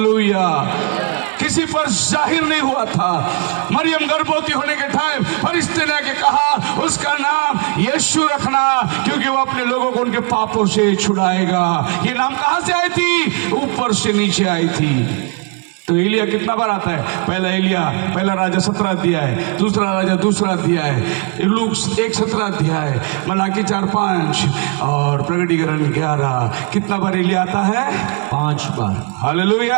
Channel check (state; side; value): quieter; left; 33.6 dB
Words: किसी पर जाहिर नहीं हुआ था। मरियम गर्भवती होने के टाइम फरिश्ते ने आके कहा, उसका नाम यीशु रखना, क्योंकि वो अपने लोगों को उनके पापों से छुड़ाएगा। ये नाम कहां से आई थी? ऊपर से नीचे आई थी। तो एलिया कितना बार आता है? पहला राजा 17 अध्याय, दूसरा राजा 2 अध्याय, लूक 1:17 अध्याय, मलाकी 4:5 और प्रकटीकरण 11। कितना बार एलिया आता है? 5 बार।